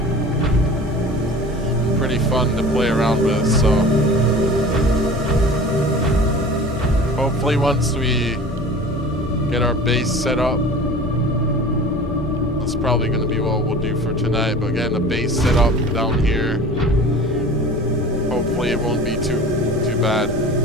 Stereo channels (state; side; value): normal; both; correlation 0.40